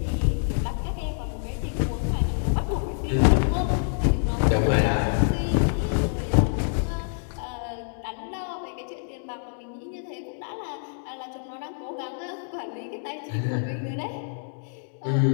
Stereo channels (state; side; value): silent; right; digital silence